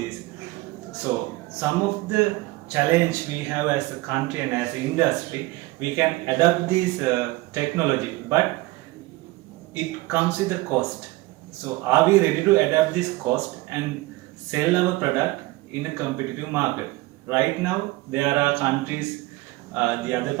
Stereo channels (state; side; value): quieter; left; 20.4 dB